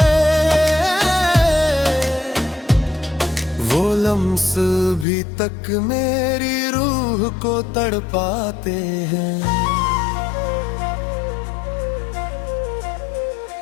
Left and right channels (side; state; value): right; drops out; at 5.1 s